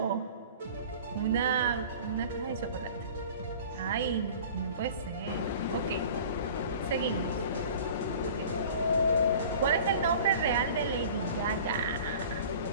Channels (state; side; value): inverted; both; correlation -0.43